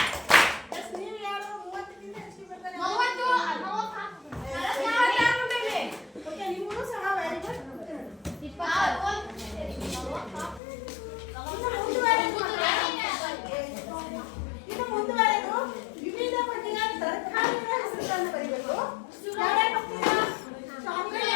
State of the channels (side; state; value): right; drops out; at 10.6 s